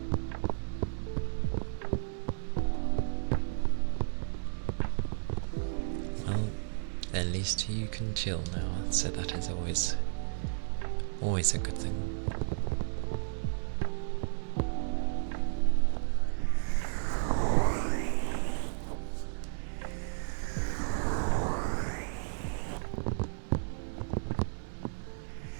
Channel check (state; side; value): silent; left; digital silence